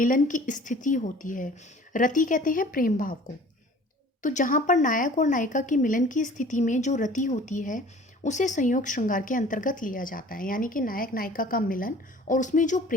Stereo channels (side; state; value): both; normal; correlation 0.48